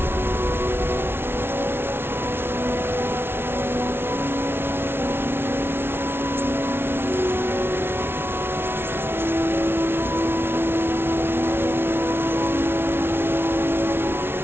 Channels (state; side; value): late; left; 0.11 ms